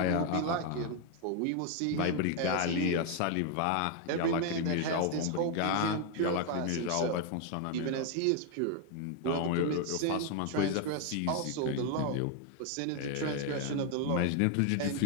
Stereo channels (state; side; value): different; both; correlation 0.01